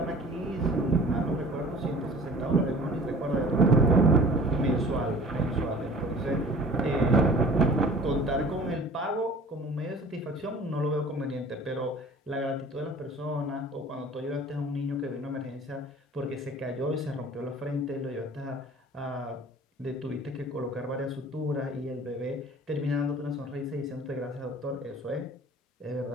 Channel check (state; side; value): normal; both; correlation 0.46